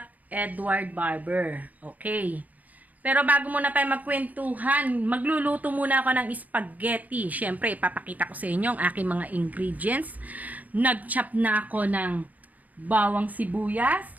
Edward Barber? Okay. Pero bago muna tayo magkwentuhan, magluluto muna ako ng spaghetti. Siyempre, ipapakita ko sa inyo ang aking mga ingredients. Nag-chop na ako ng bawang sibuyas.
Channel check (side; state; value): left; late; 0.078 ms